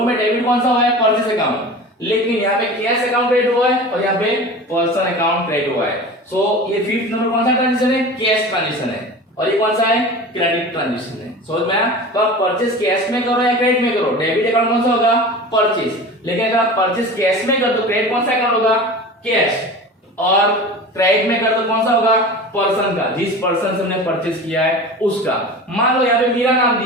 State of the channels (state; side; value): normal; both; correlation 0.34